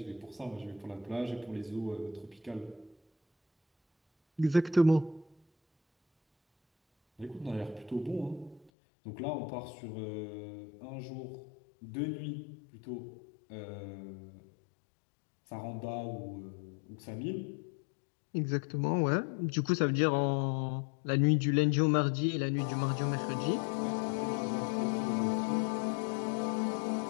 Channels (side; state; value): right; drops out; at 8.7 s